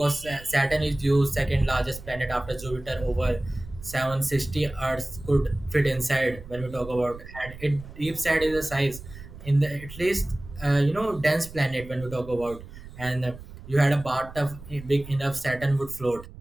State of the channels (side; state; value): right; noise; rumble, 15 dB below the sound